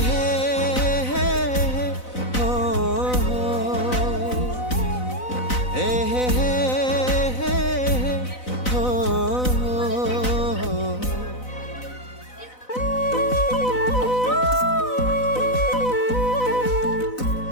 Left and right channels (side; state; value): right; late; 4.0 ms